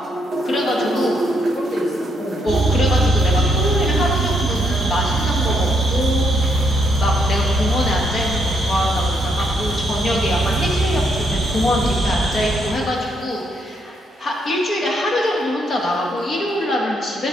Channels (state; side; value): normal; both; correlation 0.75